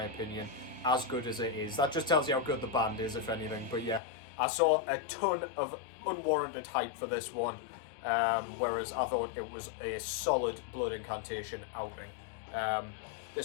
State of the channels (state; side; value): drops out; right; at 4.0 s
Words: opinion. As good as it is, that just tells you how good the band is, if anything. But yeah, I saw a ton of unwarranted hype for this one, whereas I thought it was a solid Blood Incantation outing.